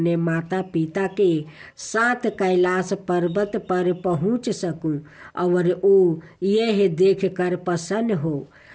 माता पिता के साथ कैलाश पर्वत पर पहुंच सकूं और वो यह देखकर प्रसन्न हो।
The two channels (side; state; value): both; identical; correlation 1.00